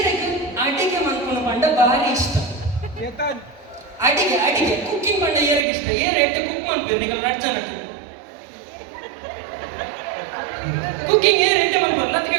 ಅಡಿಗೆ ಮಾಡ್ಕೊಂಡು ಪಂಡ ಭಾರಿ ಇಷ್ಟ. ಅಡಿಗೆ ಕುಕ್ಕಿಂಗ್ ಪಂಡ ಏರಿಗೆ ಇಷ್ಟ ಏರೆಟ್ಟು ಕುಕ್ ಮಾಡ್ತೀರಿ ಈಗ ನಡ್ಚನಕ್ಕೆ ಕುಕ್ಕಿಂಗ್ ಏರೆಟ್ಟು ಮಾಡ್ಬೋದು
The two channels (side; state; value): left; drops out; at 5.7 s